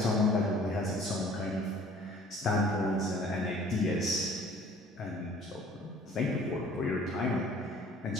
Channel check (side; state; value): both; normal; correlation 0.52